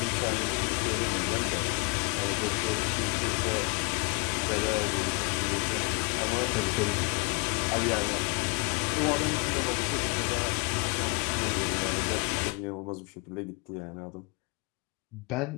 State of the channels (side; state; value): right; quieter; 31.5 dB